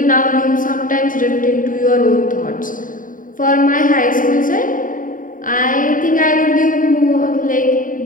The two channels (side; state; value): right; late; 0.39 ms